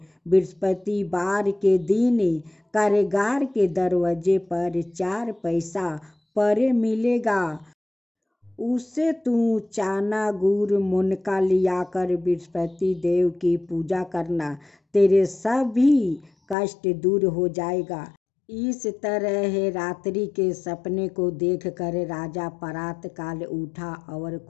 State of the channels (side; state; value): right; drops out; at 16.6 s